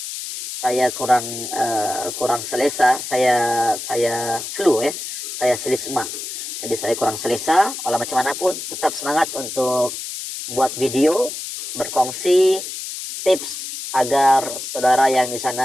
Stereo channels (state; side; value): noise; left; hiss, 7 dB below the sound